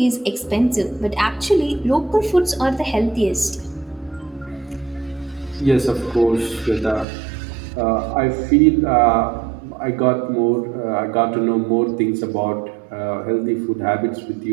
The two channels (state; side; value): drops out; left; at 7.1 s